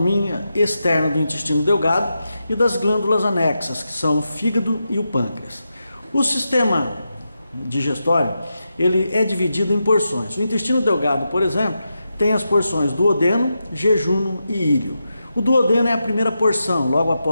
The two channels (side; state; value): both; inverted; correlation -0.88